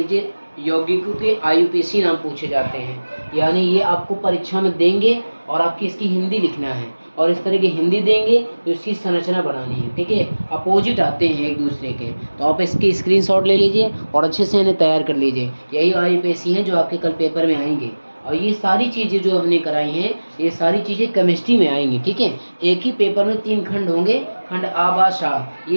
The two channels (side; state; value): both; inverted; correlation -1.00